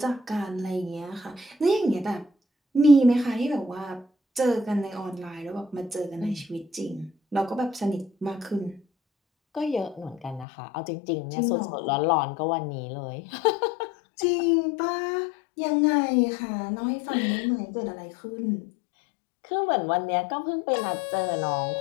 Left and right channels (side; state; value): right; drops out; at 10.5 s